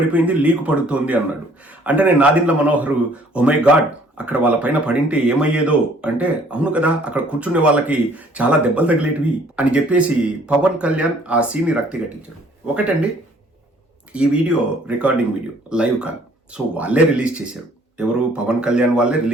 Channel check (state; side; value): normal; both; correlation 0.59